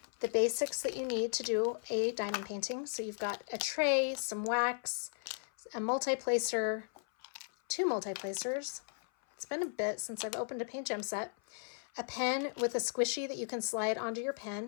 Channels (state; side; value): silent; right; 54 dB below the other